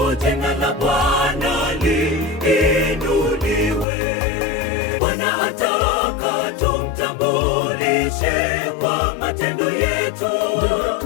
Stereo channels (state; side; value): drops out; right; at 3.9 s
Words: jina la Bwana liinuliwe. Bwana ataka tumtambulishe kwa matendo yetu,